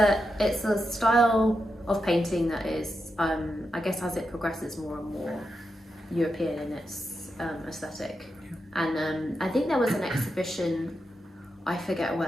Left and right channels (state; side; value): normal; both; correlation 0.87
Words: a style of painting that is, I guess, as it progresses more and more European in its aesthetic. Yeah. And I think there was an exhibition, I forget